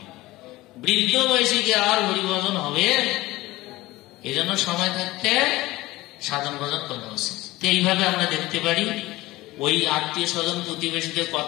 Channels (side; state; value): right; quieter; 18.7 dB